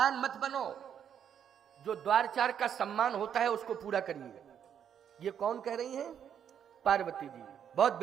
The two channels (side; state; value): left; quieter; 8.7 dB